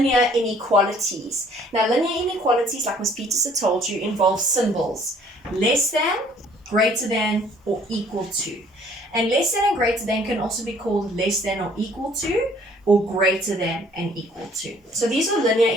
inequalities. Now linear inequalities, like Ms. Peterson told you, involve symbols less than, greater than, or equal to. And less than and greater than can also be called less than or equal to, or greater than and equal to. So these are linear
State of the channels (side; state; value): both; normal; correlation 0.58